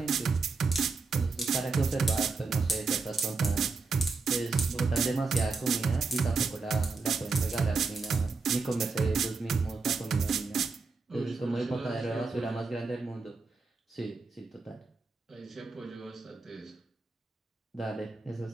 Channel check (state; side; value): quieter; left; 4.2 dB